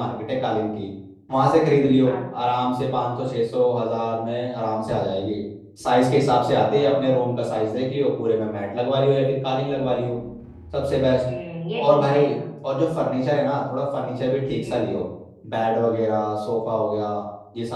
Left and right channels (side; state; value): both; identical; correlation 1.00